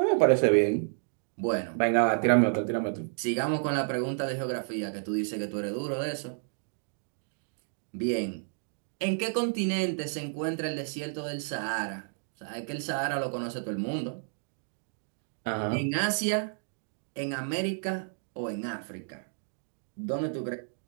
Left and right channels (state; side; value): silent; left; digital silence